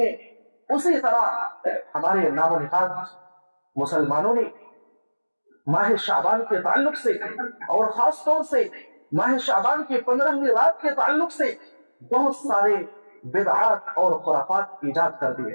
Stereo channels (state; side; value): inverted; both; correlation -1.00